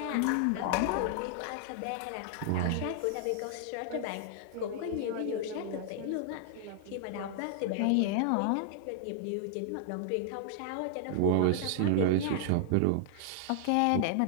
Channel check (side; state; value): both; different; correlation -0.01